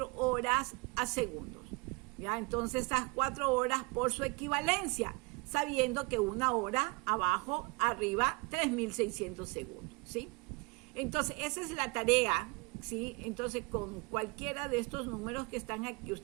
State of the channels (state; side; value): quieter; left; 27.5 dB